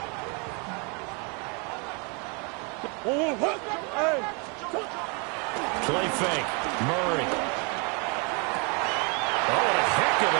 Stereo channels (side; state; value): left; quieter; 33.9 dB